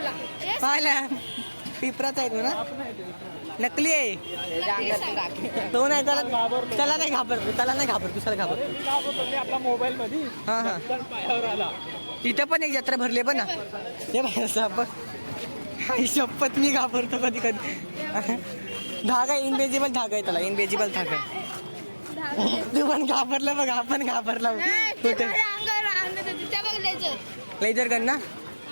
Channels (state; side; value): inverted; both; correlation -1.00